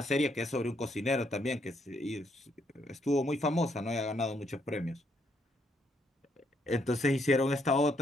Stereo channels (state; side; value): normal; both; correlation 0.73